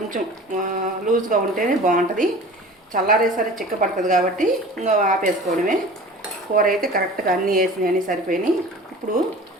లూజ్గా ఉంటేనే బాగుంటుంది. చల్లారేసరి చిక్కపడుతుంది కాబట్టి ఇంకా ఆపేసుకోవడమే. కూర అయితే కరెక్ట్గా అన్నీ వేసినాయి, సరిపోయినాయి. ఇప్పుడు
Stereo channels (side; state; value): both; normal; correlation 0.40